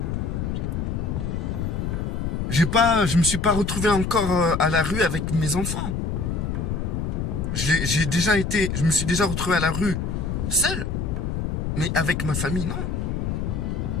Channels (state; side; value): noise; left; rumble, 2 dB below the sound